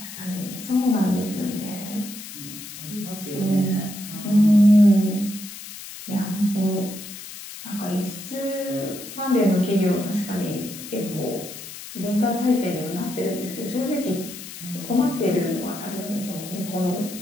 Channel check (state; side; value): noise; left; hiss, 12 dB below the sound